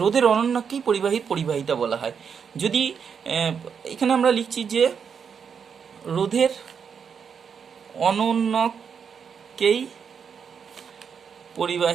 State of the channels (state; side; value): quieter; left; 6.8 dB